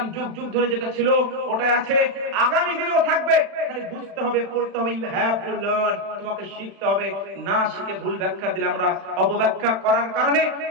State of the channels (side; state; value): left; late; 36 ms